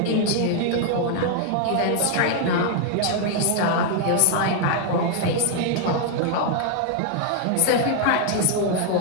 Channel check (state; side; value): different; both; correlation 0.00